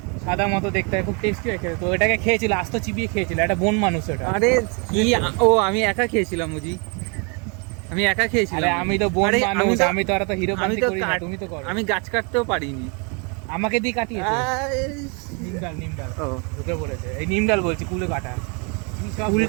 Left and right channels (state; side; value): quieter; left; 34.1 dB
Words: সাদা মতো দেখতে হয়, খুব টেস্টি হয় খেতে। তো এটাকে খেয়েছিল, আস্ত চিবিয়ে খেয়েছিল, একটা বন মানুষ ওটা। আরে কি, আমি একা খেয়েছিলাম বুঝি, আমি একা খেয়েছিলাম। আরে আমি তো বন আরে মানুষ, আমি তো আর তো হিরো আমি বান্তি তো করি না, তুমি তো করো। আমি গাছ কাটতেও পারিনি। আমাকে দিয়ে কাটিয়েছে আরে, নিমডাল ও ঢুকে পড়েছে, এই নিমডাল বলছি, কুলে কাটা। কি সব কুল